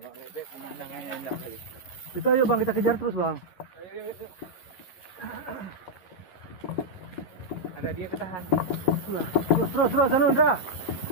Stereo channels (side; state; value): right; late; 11 ms